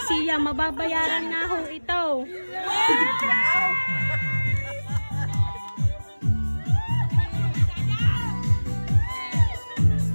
siya, mababayaran na ho ito.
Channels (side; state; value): both; inverted; correlation -1.00